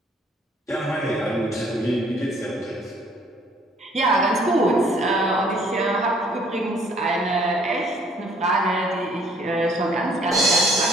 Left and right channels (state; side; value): normal; both; correlation 0.60